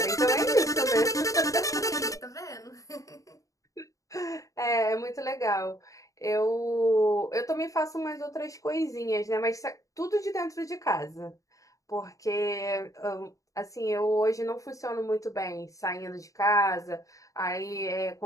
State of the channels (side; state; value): right; late; 0.16 ms